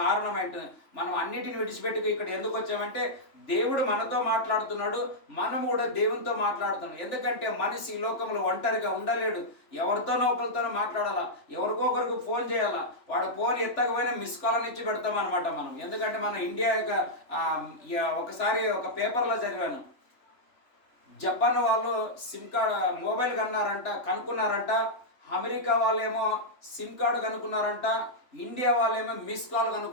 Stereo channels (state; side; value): late; right; 3.4 ms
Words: అంటున్నది. మనం అన్నిటిని విడిచిపెట్టి ఇక్కడ ఎందుకు వచ్చామంటే దేవుడు మనతో మాట్లాడుతున్నాడు, మనం కూడా దేవునితో మాట్లాడుతున్నాం. ఎందుకంటే మనిషి ఈ లోకంలో ఒంటరిగా ఉండలేడు. ఎవరితోనో ఒకరితోనో మాట్లాడాలా, ఎవరికొకరికి ఫోన్ చేయాలా. వాడు ఫోన్ ఎత్తకపోయినా మిస్ కాల్ అని ఇచ్చి పెడతామన్నమాట మనం. ఎందుకంటే మన ఇండియా యొక్క ఒకసారి ఒక పేపర్లో చదివాను, జపాన్ వాళ్ళు సిమ్ కార్డ్ మొబైల్ కనుక్కున్నారంట. అమెరికా వాళ్ళేమో సిమ్ కార్డు కనుక్కున్నారంట, ఇండియా వాళ్ళేమో మిస్ కాల్